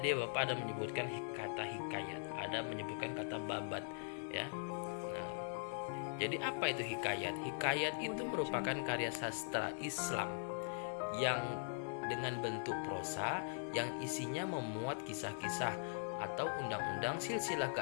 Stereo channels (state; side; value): silent; right; 50 dB below the other